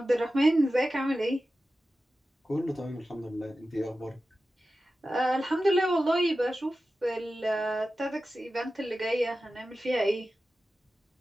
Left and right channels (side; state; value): both; normal; correlation 0.94